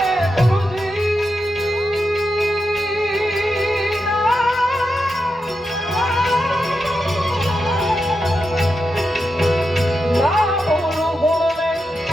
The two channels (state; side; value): normal; both; correlation 0.87